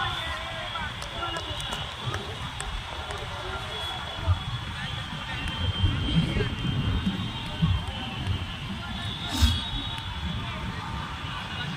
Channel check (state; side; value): identical; both; correlation 1.00